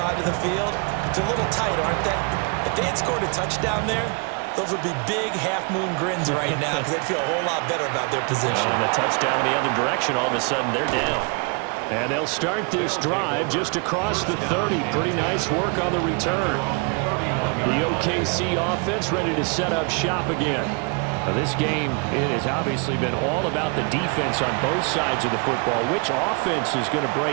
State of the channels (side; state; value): left; quieter; 34.4 dB